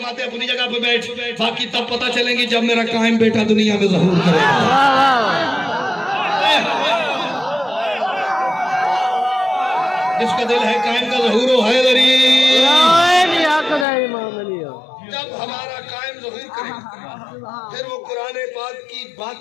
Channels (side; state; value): right; drops out; at 13.9 s